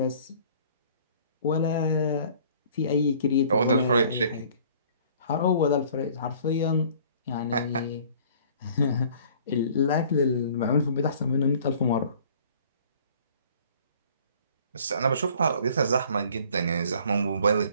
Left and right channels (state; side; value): inverted; both; correlation -0.53